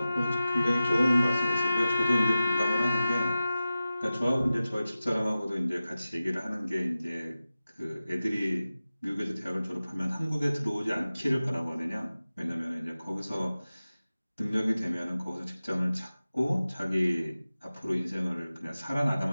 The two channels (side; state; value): both; inverted; correlation -0.95